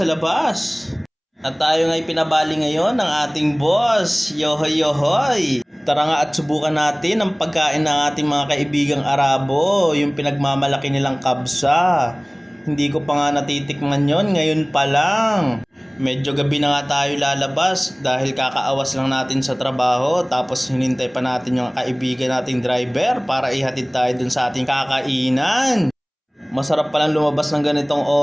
labas. At tayo nga'y pinabali ngayon ng ating boss. Yohoy, yohoy! Tara nga at subukan natin ang pagkain ng ating mga kaibigang Arabo, yung pinagmamalaki nilang kabsa. Hindi ko pa nga natitikman yon, ngayon pa lang. Medyo gabi na nga tayo lalabas dahil kakaawas lang natin sa trabaho, tapos hinintay pa natin yung kaibigan nating driver para ihatid tayo dun sa ating kakainan. Masarap palang lumabas ng ganitong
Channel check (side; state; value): both; identical; correlation 1.00